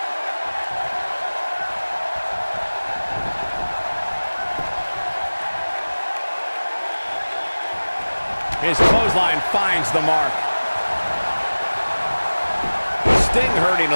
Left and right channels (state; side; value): inverted; both; correlation -1.00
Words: His clothesline finds the mark. Sting hurting